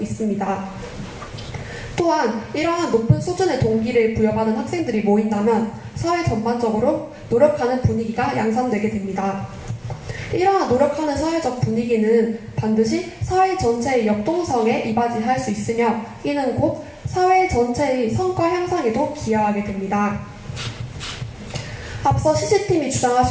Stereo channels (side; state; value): both; identical; correlation 1.00